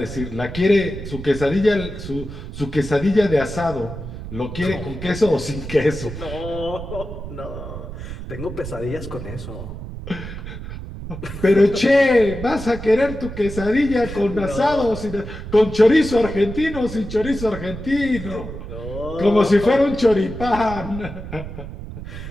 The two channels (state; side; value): noise; right; rumble, 10 dB below the sound